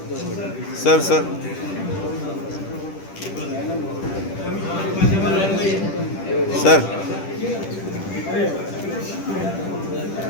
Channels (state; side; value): late; right; 10 ms